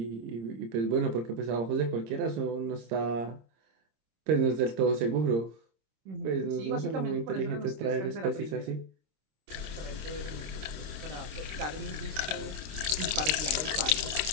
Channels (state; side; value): late; left; 26 ms